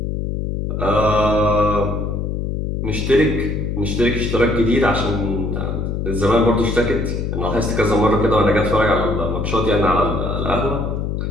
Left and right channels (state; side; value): noise; left; hum, 2 dB below the sound